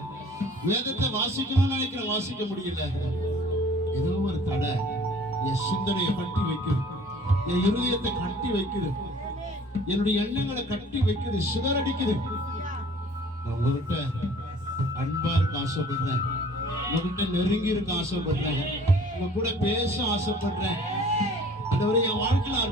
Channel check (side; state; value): both; normal; correlation 0.51